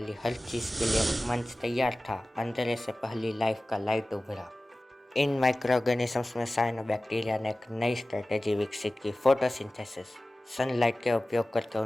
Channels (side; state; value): both; normal; correlation 0.97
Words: हर चीज़ के लिए मंच तैयार था। अंधेरे से पहली लाइफ का लाइट उभरा। इन माइक्रो ऑर्गेनिजम्स में साइनोबैक्टीरिया ने एक नई स्ट्रेटेजी विकसित की, फोटोसिंथेसिस। सनलाइट के उपयोग करके